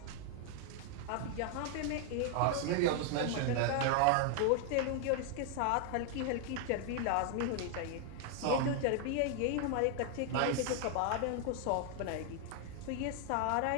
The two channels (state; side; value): different; both; correlation 0.00